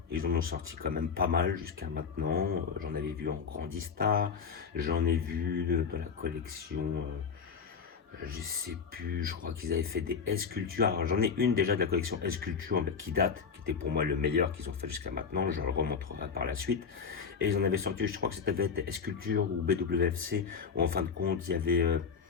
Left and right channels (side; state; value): right; quieter; 5.9 dB